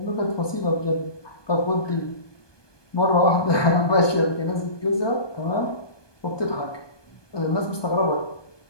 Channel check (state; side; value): late; right; 1.2 ms